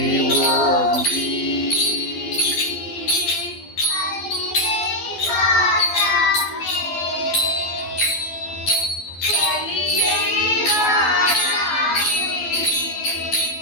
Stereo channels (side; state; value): right; late; 12 ms